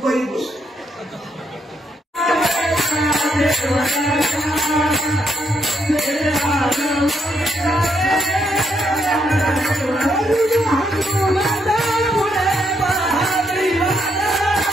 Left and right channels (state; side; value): normal; both; correlation 0.77